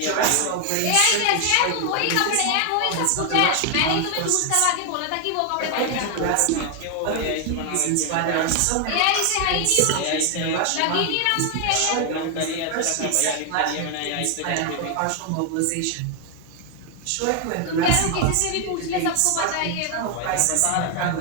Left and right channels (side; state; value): both; different; correlation 0.00